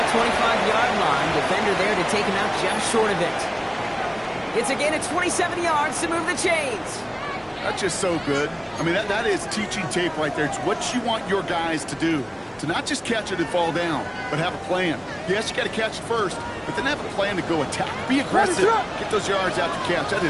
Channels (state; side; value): identical; both; correlation 1.00